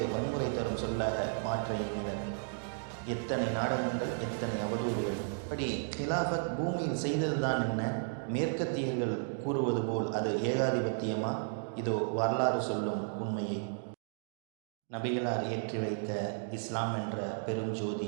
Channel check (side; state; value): left; silent; digital silence